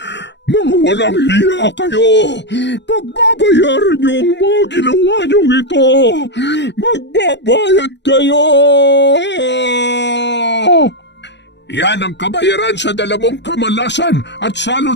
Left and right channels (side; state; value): right; late; 0.51 ms